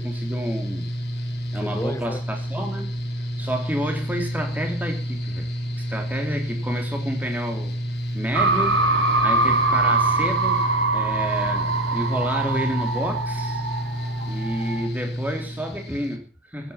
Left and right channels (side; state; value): both; normal; correlation 0.33